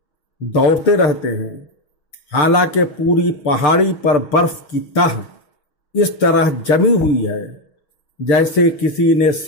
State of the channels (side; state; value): right; late; 6.7 ms